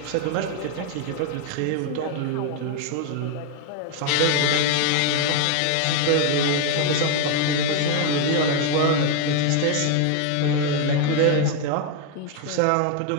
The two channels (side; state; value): both; different; correlation 0.01